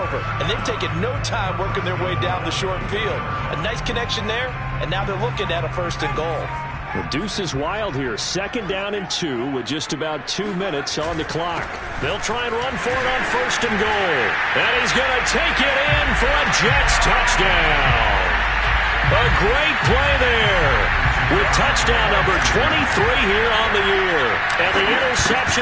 and they've taken no time working their way down the short field. A nice connection there, and now they're looking at a 1st and goal. The deuce is wild here. 2nd down and 2 with just about 2 minutes on the clock. They'll try and run for it on 1st and goal. And he's going to take it in for a Jets touchdown. A great play there. With touchdown number 23 here on the year. And the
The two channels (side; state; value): both; identical; correlation 1.00